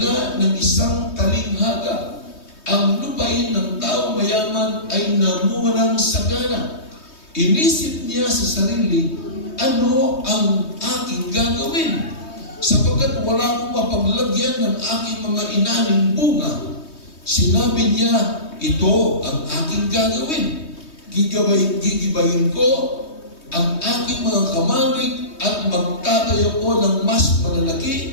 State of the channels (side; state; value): right; late; 3.2 ms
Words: ng isang talinghaga. Ang lupain ng tao mayaman ay namunga ng sagana. Inisip niya sa sarili, ano ang aking gagawin? Sapagkat wala akong mapaglagyan ng aking mga inaning bunga. Sinabi niya, ito ang aking gagawin. Gigibayin ko ang aking mga kamalig at magtatayo ko ng mas